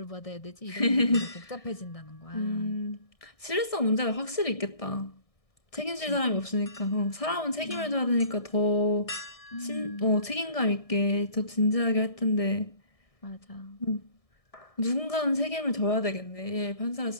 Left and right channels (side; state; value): right; late; 1.6 ms